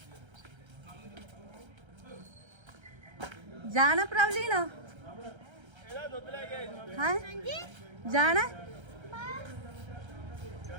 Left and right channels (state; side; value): late; left; 1.3 ms